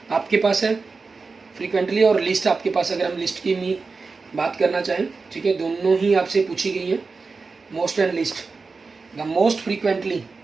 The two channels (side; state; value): left; quieter; 4.3 dB